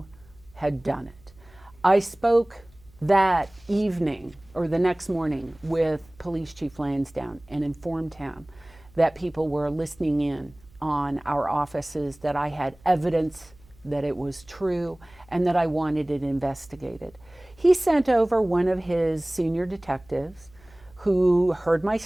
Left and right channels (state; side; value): noise; right; hum, 27 dB below the sound